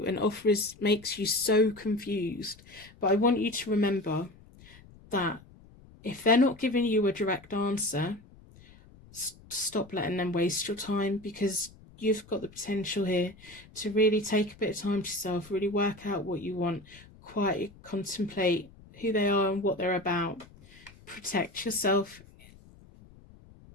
and makes you so confused. But I want you to remember that if they're not giving you a direct answer, stop letting them waste your time, because you've got the potential here to really take a bit of time to yourself, really work out what you want, quietly contemplate who they are and what they're about. Protect yourself,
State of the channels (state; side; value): noise; left; rumble, 23 dB below the sound